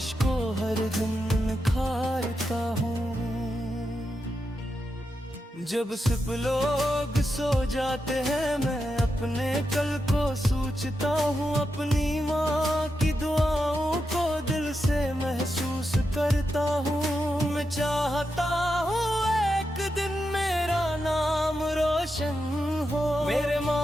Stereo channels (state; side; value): normal; both; correlation 0.87